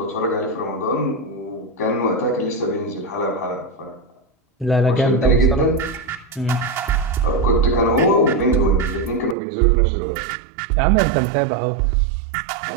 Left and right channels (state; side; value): drops out; left; at 9.3 s